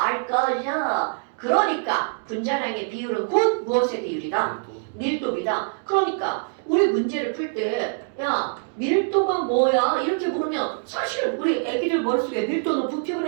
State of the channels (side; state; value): left; silent; digital silence